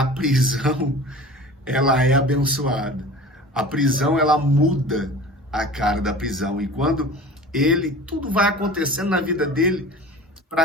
prisão, ela é abençoada. A prisão, ela muda a cara da prisão. E quando tudo vai acontecendo na vida dele,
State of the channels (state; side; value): normal; both; correlation 0.39